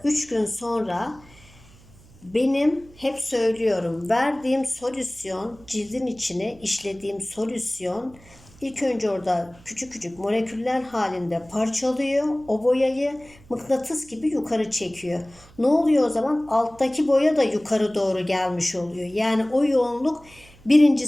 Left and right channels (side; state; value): right; noise; hum, 25 dB below the sound